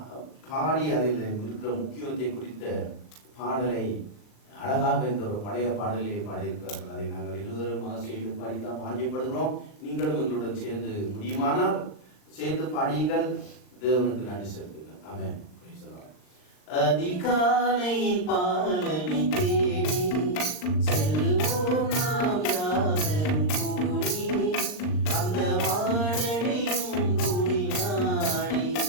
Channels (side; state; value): right; late; 39 ms